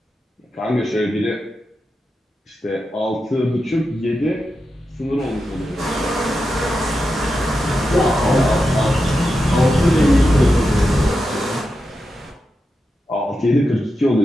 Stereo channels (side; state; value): both; normal; correlation 0.89